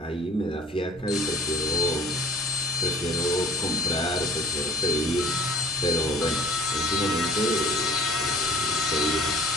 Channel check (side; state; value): both; normal; correlation 0.52